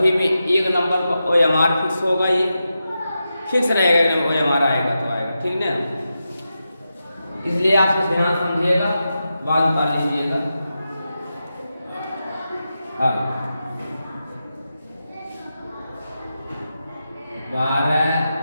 में 1 नंबर का OMR फिक्स होगा, ये फिक्स रहेगा, OMR आएगा तो आएगा, ठीक ना। इसलिए आप ध्यान समझिएगा, बात पा लीजिएगा। हाँ 12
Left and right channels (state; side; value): inverted; both; correlation -0.90